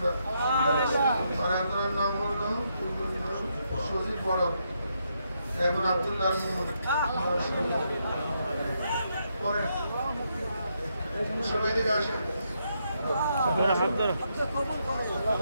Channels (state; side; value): inverted; both; correlation -0.79